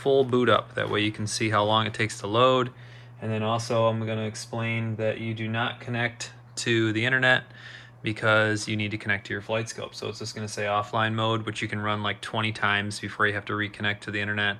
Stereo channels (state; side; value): identical; both; correlation 1.00